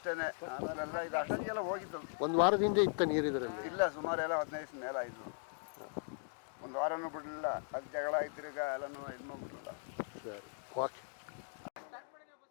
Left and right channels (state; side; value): silent; right; digital silence